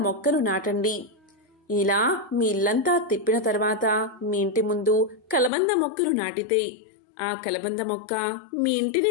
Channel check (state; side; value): drops out; right; at 5.5 s